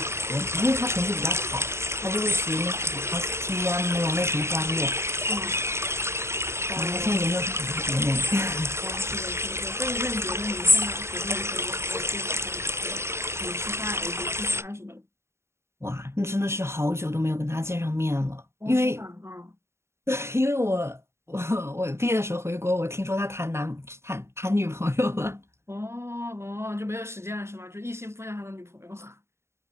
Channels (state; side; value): late; left; 0.13 ms